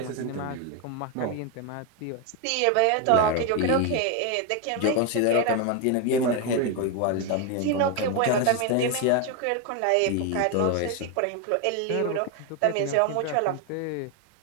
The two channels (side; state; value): both; different; correlation 0.02